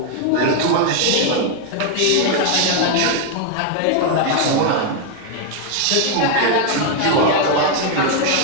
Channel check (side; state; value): both; different; correlation 0.01